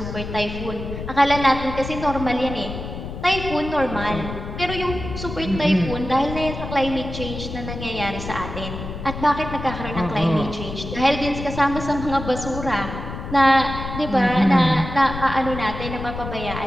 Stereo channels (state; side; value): noise; left; rumble, 8 dB below the sound